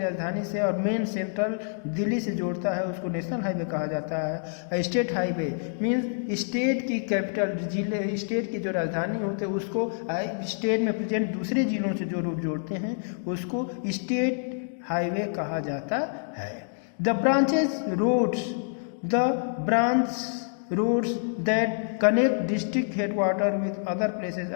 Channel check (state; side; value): silent; right; digital silence